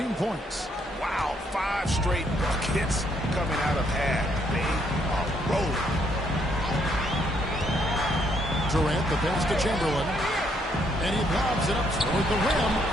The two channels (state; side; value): normal; both; correlation 0.71